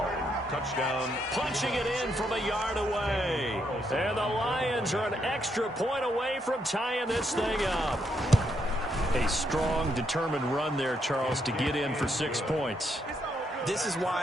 Touchdown. Punching it in from a yard away. And the Lions are an extra point away from tying this thing up. A strong, determined run there, Charles, to get in for 6 points. This is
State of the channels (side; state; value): both; normal; correlation 0.77